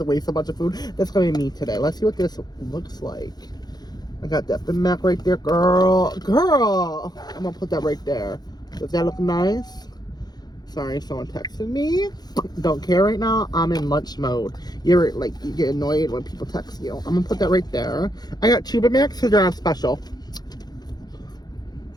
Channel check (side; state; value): right; late; 0.19 ms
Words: waste a bunch of food? That's gonna be me today. Let's see what this looks like. I got that BigMac right there, girl. Girl! I'm gonna put that right there. Does that look nice? Sorry, someone texted me. Don't care right now. I'm in lunch mode. You ever, you get annoyed when people text you. I'm gonna put that right there. I got two BigMacs because they're on special.